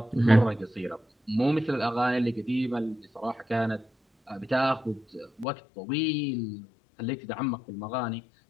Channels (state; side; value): drops out; right; at 5.5 s